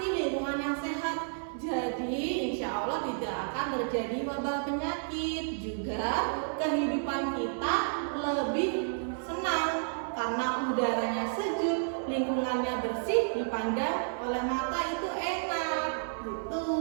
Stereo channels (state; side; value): silent; left; 57 dB below the other